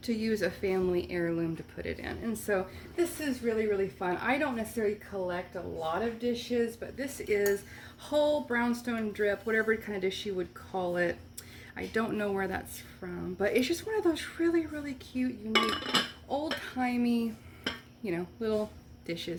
to use a family heirloom to put it in. And so this is really, really fun. I don't necessarily collect a lot of dishes, but this is whole brownstone drip, whatever kind of dish you would call it. I don't know where that's from, but it's just one of those really, really cute, unique, old-timey, you know, little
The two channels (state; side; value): identical; both; correlation 1.00